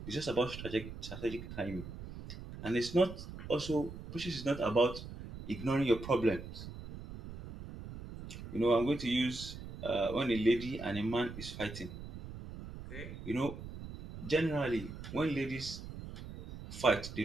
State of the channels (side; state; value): right; noise; rumble, 11 dB below the sound